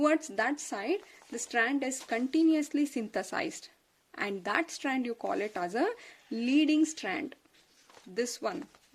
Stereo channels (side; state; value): both; identical; correlation 1.00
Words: that side the strand is continuously synthesized, and that strand you call it as a leading strand. This one